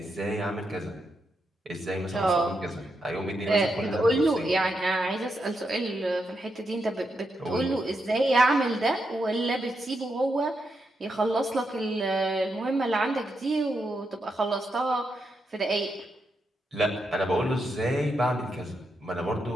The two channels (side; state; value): both; normal; correlation 0.83